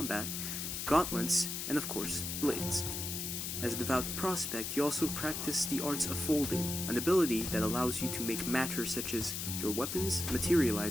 gauntlets, and of course, blades. As a devout prospect, you also practice the arts of folding, an ability that allows you to make matter such as your weapons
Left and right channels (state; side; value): noise; left; hiss, 4 dB below the sound